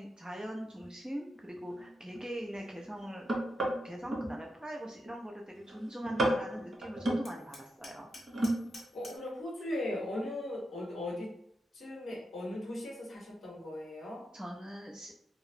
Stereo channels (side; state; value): both; normal; correlation 0.86